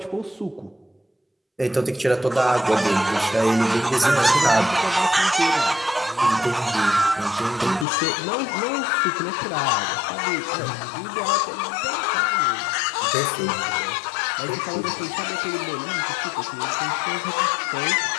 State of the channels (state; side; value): drops out; right; at 7.9 s